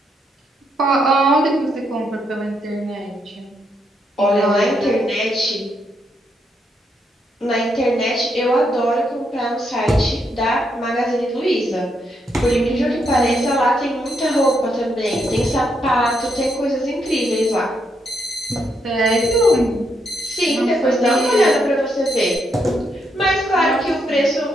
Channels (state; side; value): normal; both; correlation 0.78